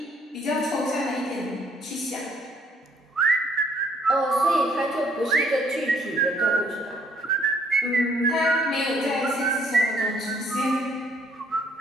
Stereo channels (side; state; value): both; normal; correlation 0.65